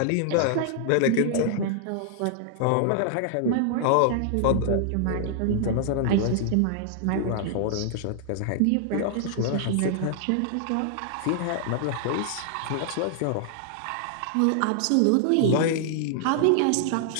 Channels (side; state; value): both; different; correlation -0.01